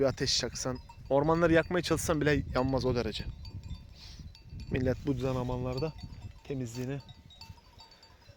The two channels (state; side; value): identical; both; correlation 1.00